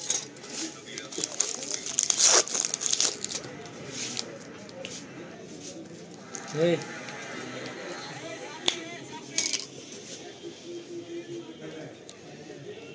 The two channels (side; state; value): both; identical; correlation 1.00